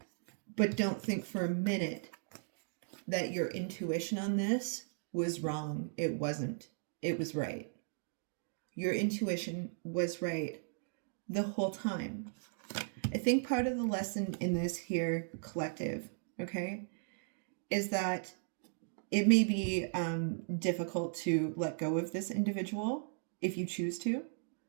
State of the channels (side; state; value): left; silent; digital silence